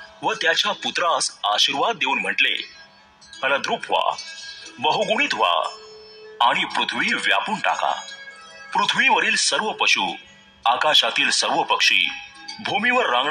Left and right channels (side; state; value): both; identical; correlation 1.00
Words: व त्याच्या पुत्रास आशीर्वाद देऊन म्हटले, फलद्रूप व्हा, बहुगुणित व्हा आणि पृथ्वी व्यापून टाका। पृथ्वीवरील सर्व पशु, आकाशातील सर्व पक्षी, भूमीवर